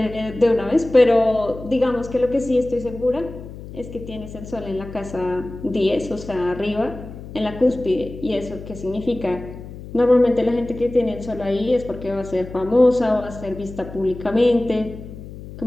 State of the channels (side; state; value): left; noise; hum, 13 dB below the sound